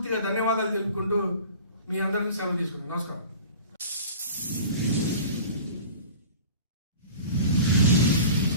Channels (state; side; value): inverted; both; correlation -0.40